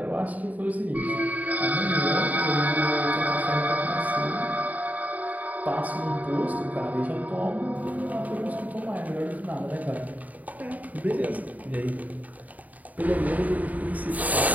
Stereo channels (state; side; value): late; left; 0.075 ms